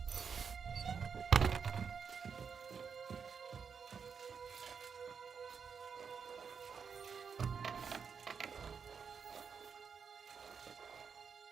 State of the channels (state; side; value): quieter; left; 6.3 dB